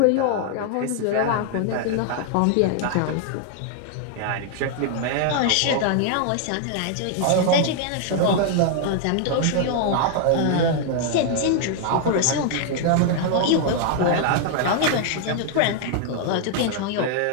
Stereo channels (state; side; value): different; both; correlation 0.00